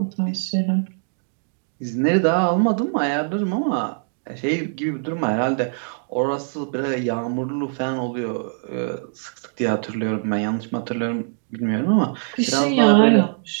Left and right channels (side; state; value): left; silent; digital silence